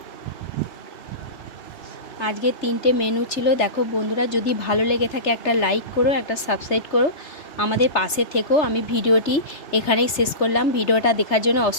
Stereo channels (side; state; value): right; late; 3.3 ms